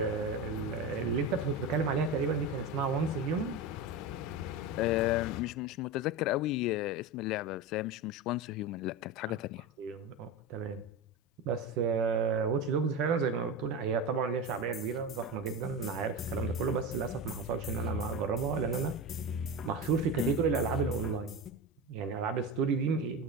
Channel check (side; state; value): both; normal; correlation 0.23